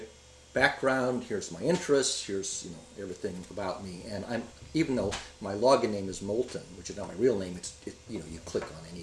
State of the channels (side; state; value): both; identical; correlation 1.00